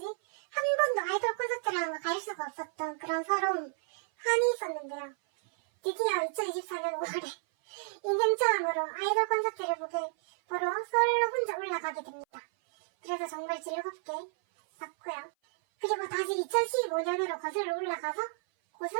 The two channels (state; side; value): silent; left; 56 dB below the other